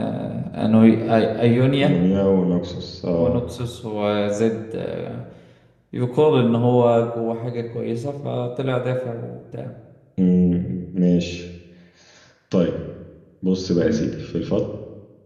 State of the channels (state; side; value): identical; both; correlation 1.00